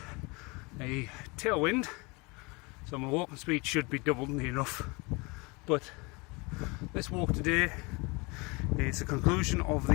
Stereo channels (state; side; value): quieter; right; 27.4 dB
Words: a tailwind, so my walking speed should be doubled near enough. But this walk today is the conclusion of